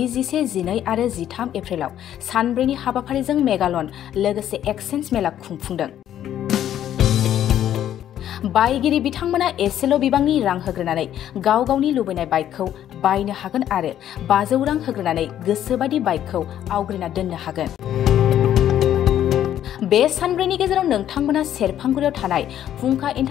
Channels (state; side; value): quieter; right; 11.0 dB